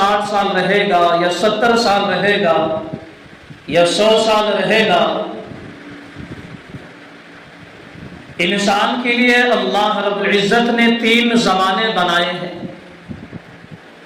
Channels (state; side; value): identical; both; correlation 1.00